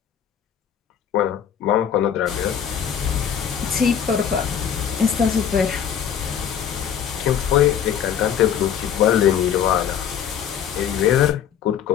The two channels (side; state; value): right; quieter; 8.6 dB